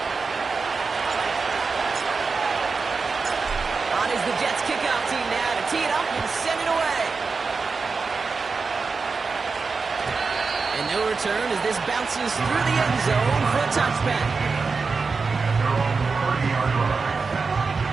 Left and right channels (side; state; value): left; quieter; 4.6 dB